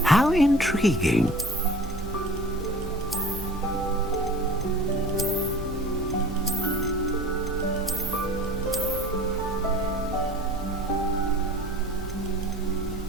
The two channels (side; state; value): both; normal; correlation 0.42